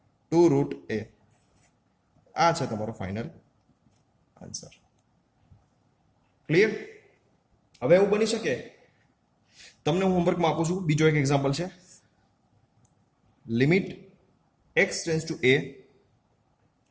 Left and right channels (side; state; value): both; identical; correlation 1.00